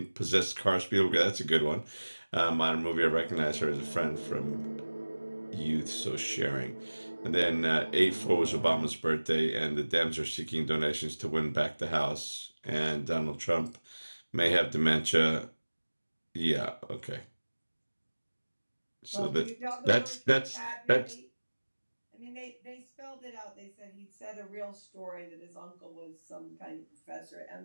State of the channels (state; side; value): inverted; both; correlation -1.00